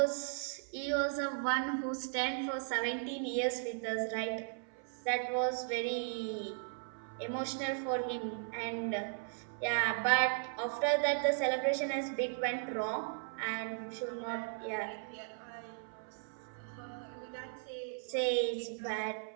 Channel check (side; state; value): left; silent; 53 dB below the other